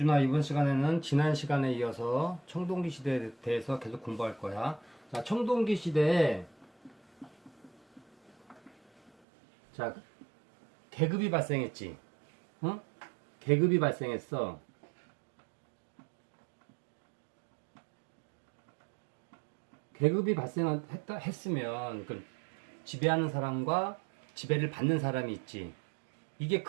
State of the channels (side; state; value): left; drops out; at 9.1 s